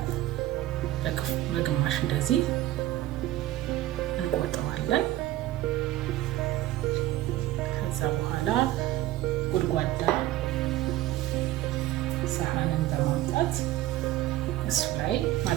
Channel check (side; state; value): left; quieter; 15.3 dB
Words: በግማሽ እንደዚህ እንቆርጠዋለን። ከዛ በኋላ ጉድጓዳ ሳህንን በማምጣት እሱ ላይ